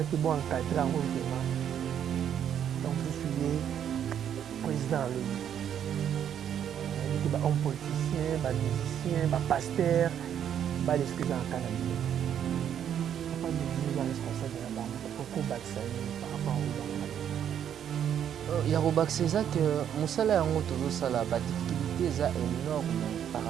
ont encadré en vraiment. Donc, je suis président de l'ONU. Il y a des hommes politiciens, des musiciens, des pasteurs, des excuses en Canada. Papa, nous sommes responsables de la banque. Pourquoi par rapport aux banques? Yarobak c'est ça que musala yango tozo sala ba difficulté est énorme par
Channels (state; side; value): quieter; left; 9.3 dB